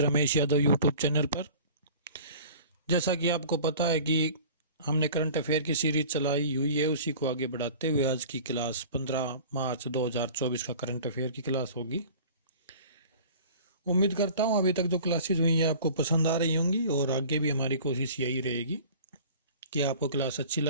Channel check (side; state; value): both; inverted; correlation -0.43